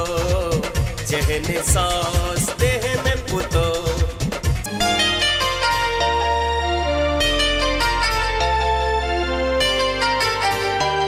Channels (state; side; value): identical; both; correlation 1.00